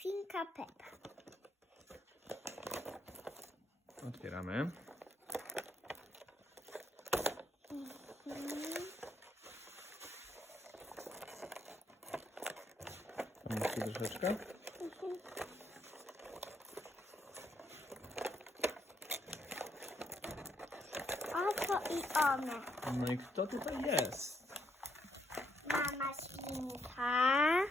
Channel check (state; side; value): normal; both; correlation 0.75